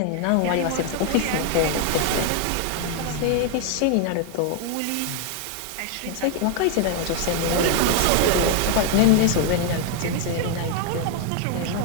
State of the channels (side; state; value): both; different; correlation 0.01